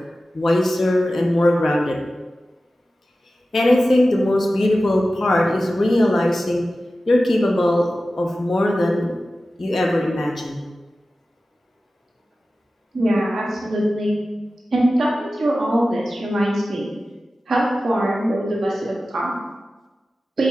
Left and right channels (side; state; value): both; normal; correlation 0.95